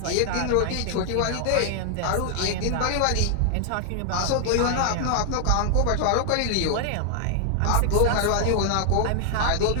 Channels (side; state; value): both; different; correlation 0.00